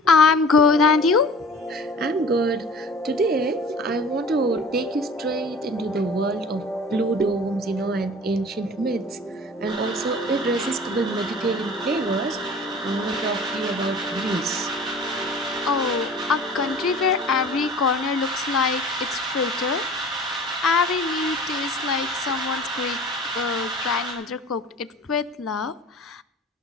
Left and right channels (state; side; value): normal; both; correlation 0.43